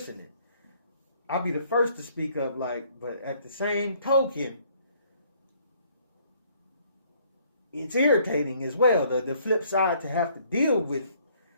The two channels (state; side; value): inverted; both; correlation -0.63